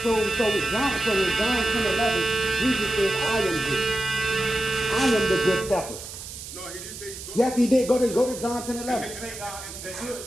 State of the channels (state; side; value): noise; right; hiss, 11 dB below the sound